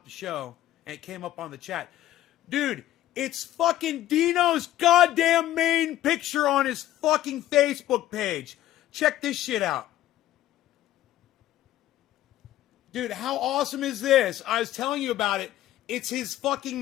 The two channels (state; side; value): quieter; right; 13.8 dB